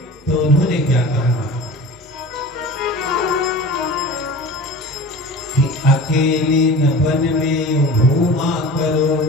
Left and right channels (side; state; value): both; normal; correlation 0.37